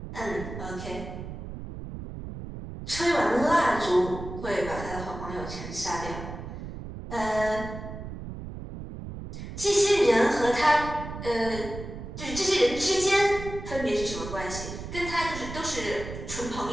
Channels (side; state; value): right; noise; rumble, 9 dB below the sound